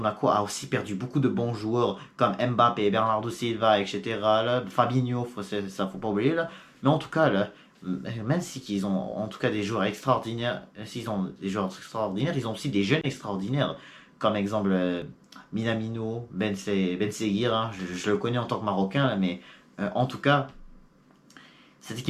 a aussi perdu beaucoup de bons joueurs comme Mbappé, Bernardo Silva, etc. Là, Fabinho, ça faut pas oublier là. Mais en tout cas là, même si ils ont en tout cas des joueurs extraordinaires, s'ils ont des joueurs extraordinaires, ils ont aussi des jeunes extraordinaires. Comme exemple Minamino, Ben Seguir, hein, je le connais en tant que Marocain, là, mais en tout cas, cette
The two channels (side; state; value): both; identical; correlation 1.00